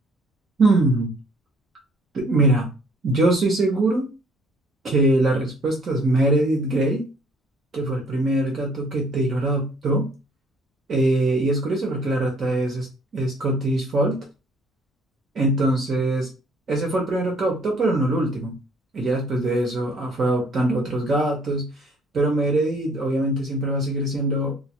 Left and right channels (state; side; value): normal; both; correlation 0.59